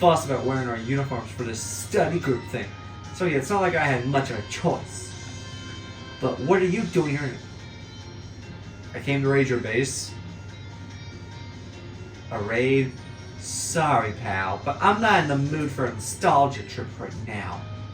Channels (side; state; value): both; identical; correlation 1.00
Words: about wearing our uniforms for this study group thing, so yeah, it's not like I had much of a choice. But what are you doing here? I came to raid your base. A raid? Sorry, pal, but I'm not in the mood for a nostalgia trip right now.